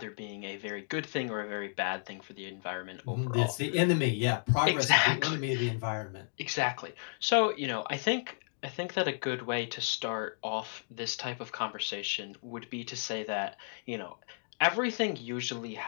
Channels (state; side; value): silent; right; digital silence